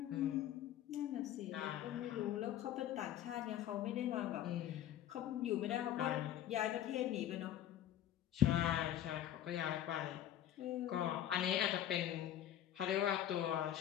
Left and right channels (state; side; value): quieter; right; 11.4 dB